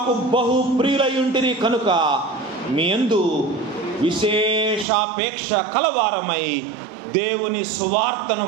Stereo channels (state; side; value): drops out; left; at 4.9 s